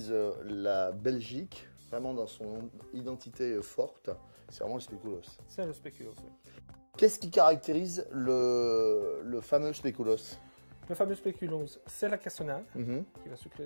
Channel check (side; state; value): both; inverted; correlation -1.00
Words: la Belgique, vraiment dans son identité forte, c'est vraiment le spéculoos. C'est le spéculoos, oui. Qu'est-ce qui caractérise le fameux spéculoos? Le fameux spéculoos, c'est la cassonade qui va